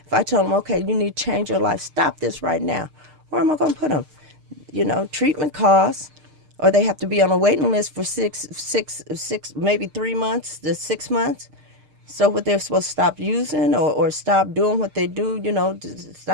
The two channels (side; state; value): left; late; 6.6 ms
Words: If I tell them, okay, you need to change your life, stop this right now, where am I going to put them? Treatment costs, or they have to be on a waiting list for six, maybe 3 months to 6 months. So what they're supposed to stop using or stop doing what they do, to